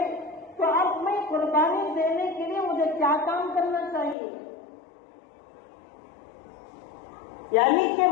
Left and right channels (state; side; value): drops out; right; at 4.2 s